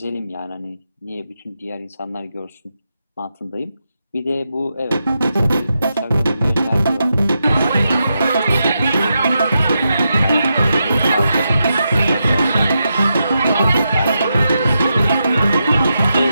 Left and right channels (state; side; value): inverted; both; correlation -0.85